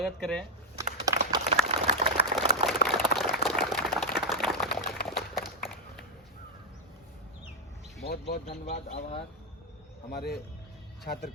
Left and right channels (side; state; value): both; normal; correlation 0.01